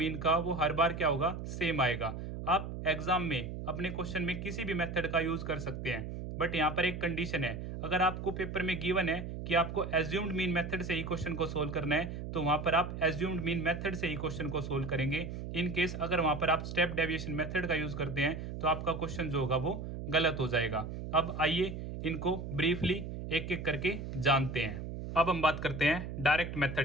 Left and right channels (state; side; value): noise; right; hum, 7 dB below the sound